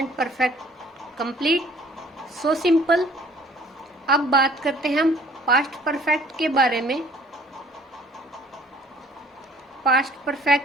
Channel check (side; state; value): both; normal; correlation 0.55